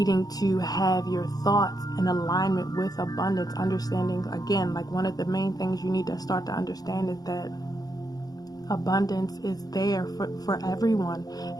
to have your thoughts in alignment with abundance, understanding, again, like one of the main things you need to start to understand is that abundance is there for everyone,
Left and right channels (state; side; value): late; right; 0.19 ms